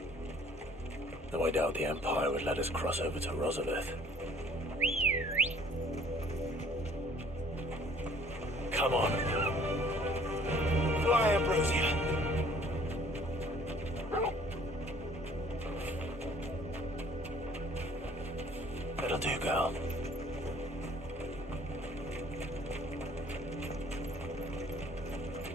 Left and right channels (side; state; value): both; normal; correlation 0.56